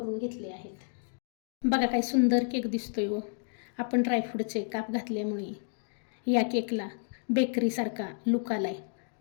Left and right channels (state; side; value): silent; right; 57 dB below the other